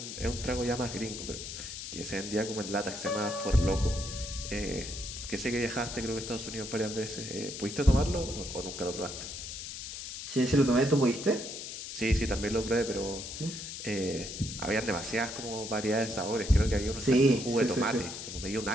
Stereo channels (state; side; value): noise; left; hiss, 8 dB below the sound